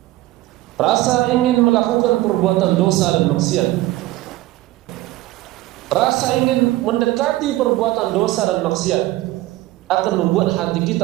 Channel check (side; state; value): left; quieter; 17.0 dB